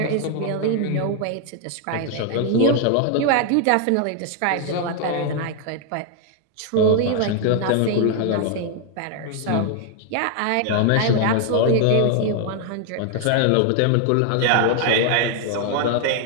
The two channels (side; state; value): both; different; correlation 0.00